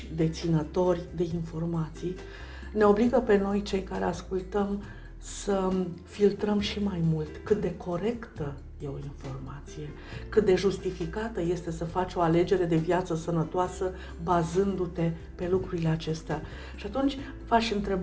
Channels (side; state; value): both; identical; correlation 1.00